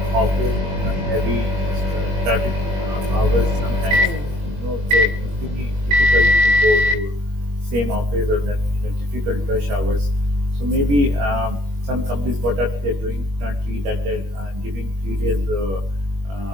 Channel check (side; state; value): left; late; 21 ms